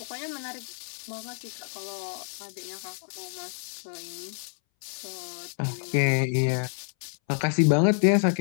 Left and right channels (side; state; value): right; silent; 59 dB below the other